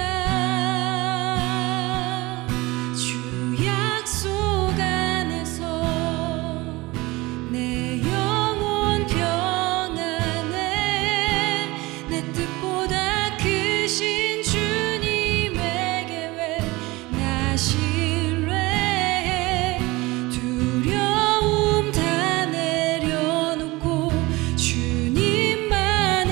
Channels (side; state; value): left; quieter; 21.7 dB